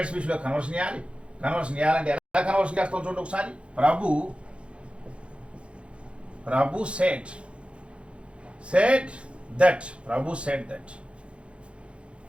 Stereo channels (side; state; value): left; late; 0.059 ms